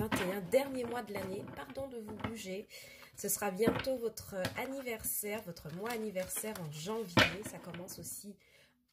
dernier mois de l'année. Pardon de vous bouger. Ce sera bientôt votre anniversaire, votre mois anniversaire en janvier. Ça commence aussi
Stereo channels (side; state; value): both; identical; correlation 1.00